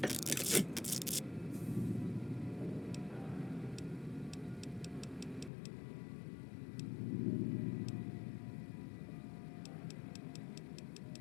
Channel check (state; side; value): drops out; right; at 5.5 s